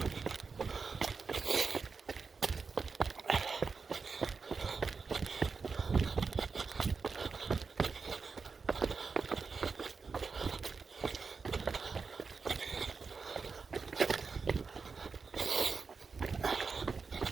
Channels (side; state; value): left; quieter; 4.9 dB